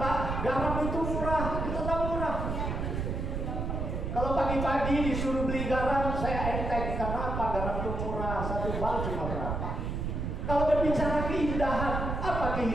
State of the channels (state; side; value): noise; right; rumble, 2 dB below the sound